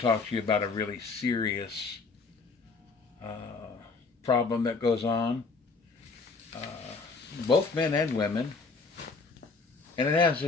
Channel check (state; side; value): quieter; right; 4.3 dB